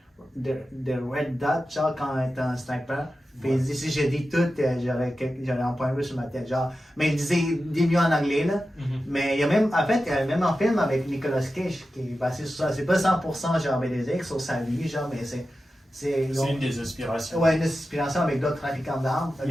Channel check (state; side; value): normal; both; correlation 0.92